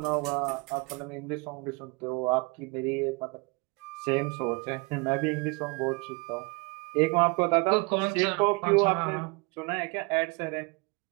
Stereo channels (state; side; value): quieter; left; 29.1 dB